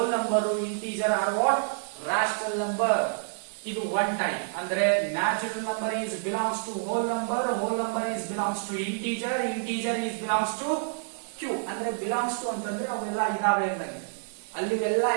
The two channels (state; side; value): silent; left; digital silence